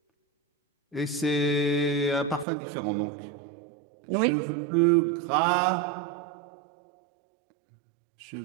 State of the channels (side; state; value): left; drops out; at 2.5 s